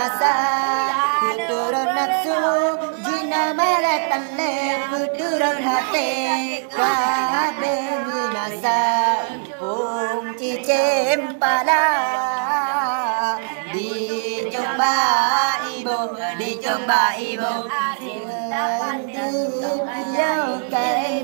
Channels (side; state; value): left; silent; digital silence